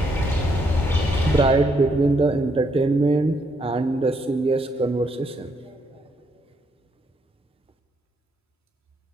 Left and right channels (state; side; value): normal; both; correlation 0.74